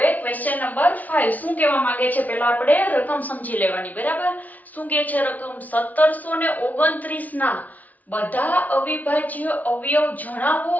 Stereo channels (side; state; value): right; late; 0.075 ms